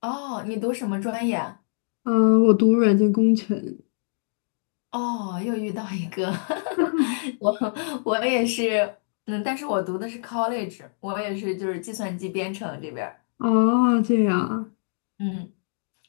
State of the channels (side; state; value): right; silent; digital silence